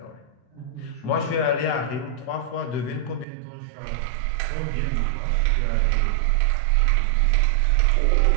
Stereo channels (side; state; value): left; drops out; at 3.2 s